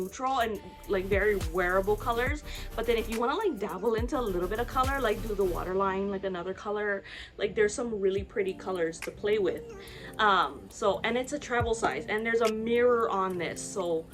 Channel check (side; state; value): both; identical; correlation 1.00